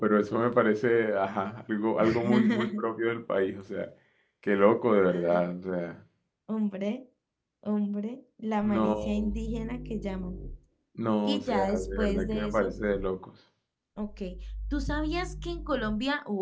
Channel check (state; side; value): identical; both; correlation 1.00